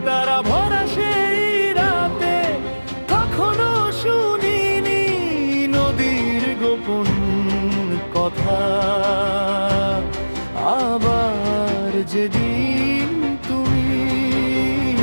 তারা ভরা সেই রাতে, কখনো শুনিনি নদীর গোপন কথা। আবার যেদিন তুমি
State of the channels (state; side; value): inverted; both; correlation -1.00